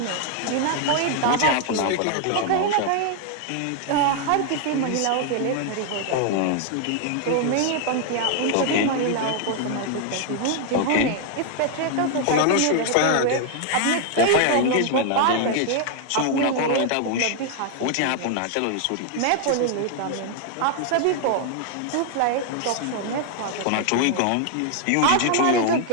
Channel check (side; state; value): both; different; correlation 0.00